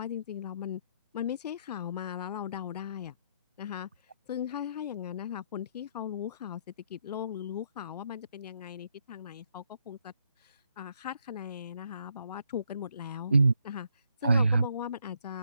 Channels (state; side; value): inverted; both; correlation -0.74